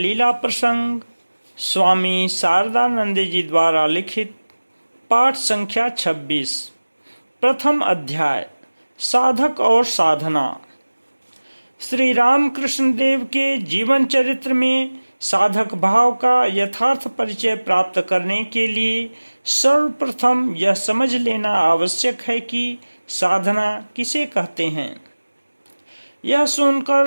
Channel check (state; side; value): inverted; both; correlation -1.00